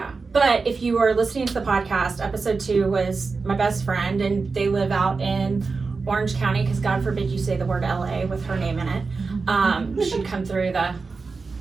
but if you are listening to the podcast, episode 2 was my best friend, and they live out in Orange County, because God forbid you say the word LA with her name in it. She'd come through the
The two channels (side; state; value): left; quieter; 4.4 dB